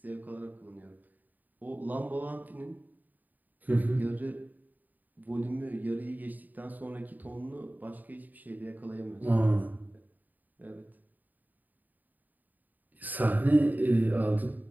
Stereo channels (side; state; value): left; late; 0.084 ms